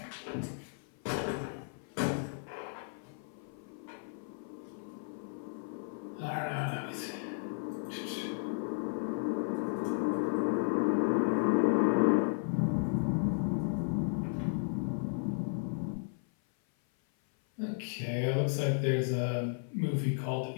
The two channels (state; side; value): silent; right; 55 dB below the other